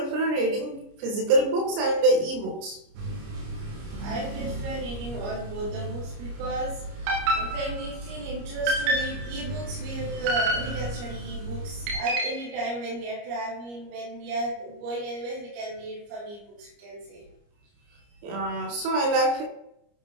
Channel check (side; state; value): left; late; 29 ms